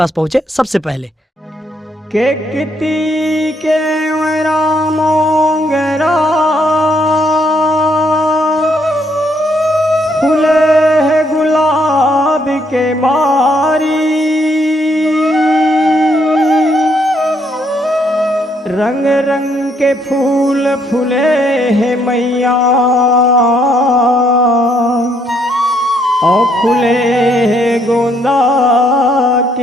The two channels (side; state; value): both; normal; correlation 0.71